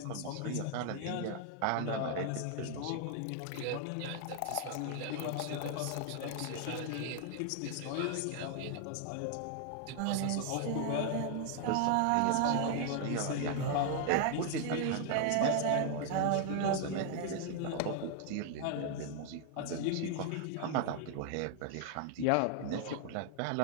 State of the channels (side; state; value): both; different; correlation 0.00